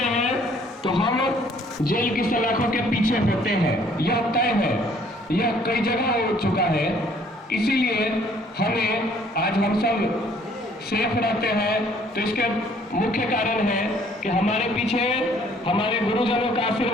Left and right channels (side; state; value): both; normal; correlation 0.60